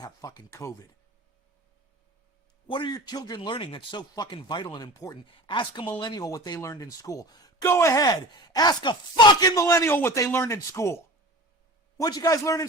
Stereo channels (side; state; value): both; normal; correlation 0.36